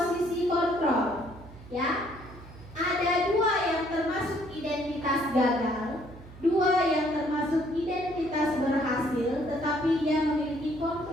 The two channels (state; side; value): noise; right; hum, 18 dB below the sound